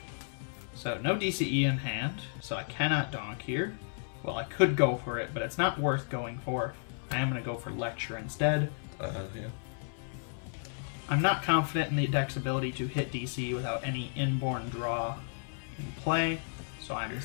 So no DCE in hand, so I cannot donk here. Well, I could go for it, but it's not worth going for. I am going to go for Lecture instead. Yeah. I'm not confident in the deck's ability to hit DC without any inborn draw in play, so I'm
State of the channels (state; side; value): silent; right; 56 dB below the other